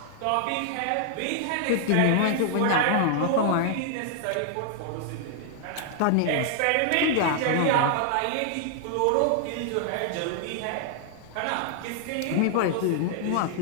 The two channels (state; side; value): different; both; correlation 0.00